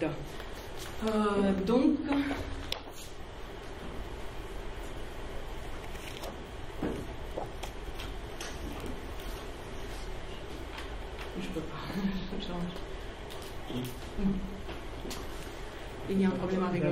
Donc, je peux pas. Il y a un problème avec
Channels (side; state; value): both; identical; correlation 1.00